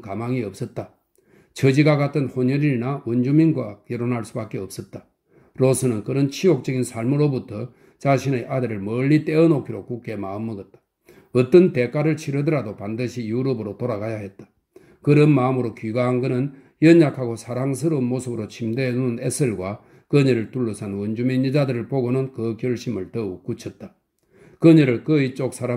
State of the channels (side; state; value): both; identical; correlation 1.00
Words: 가망이 없었다. 처지가 같은 혼혈인이나 원주민과 결혼할 수밖에 없었다. 로스는 그런 치욕적인 삶으로부터 자신의 아들을 멀리 떼어놓기로 굳게 마음먹었다. 어떤 대가를 치르더라도 반드시 유럽으로 돌아가야 했다. 그런 마음으로 귀가한 그는 연약하고 사랑스러운 모습으로 침대에 누운 에셀과 그녀를 둘러싼 원주민 여자들을 보고는 그 결심을 더욱 굳혔다. 그녀를 그의 쪽